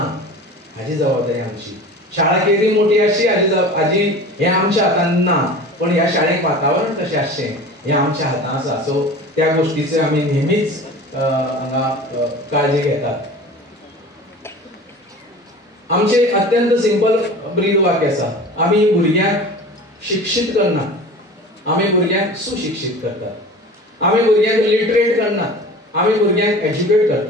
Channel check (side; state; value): both; normal; correlation 0.38